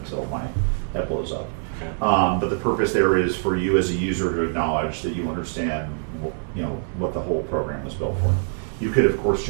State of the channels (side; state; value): left; silent; 58 dB below the other